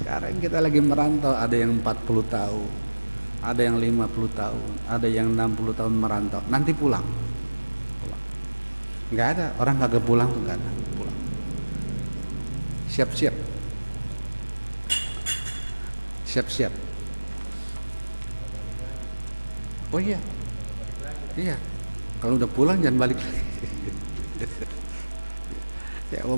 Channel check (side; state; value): both; inverted; correlation -1.00